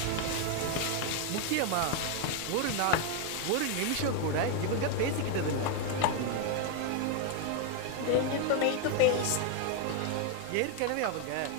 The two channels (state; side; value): different; both; correlation 0.01